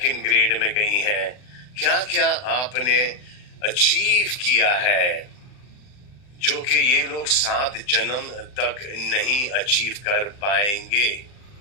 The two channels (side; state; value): right; late; 40 ms